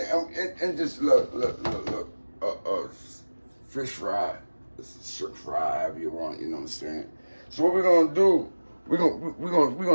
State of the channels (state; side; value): inverted; both; correlation -1.00